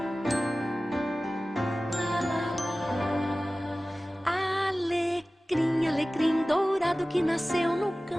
Alecrim, alecrim dourado que nasceu no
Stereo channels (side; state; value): both; normal; correlation 0.97